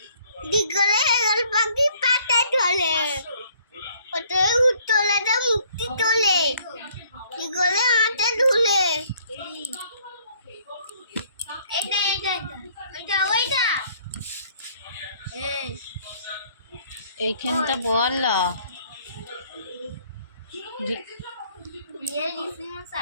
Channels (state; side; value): inverted; both; correlation -0.61